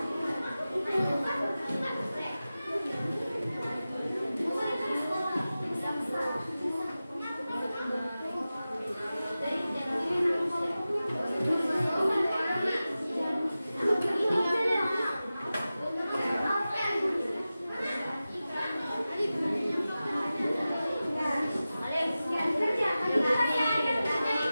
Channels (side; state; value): both; inverted; correlation -0.95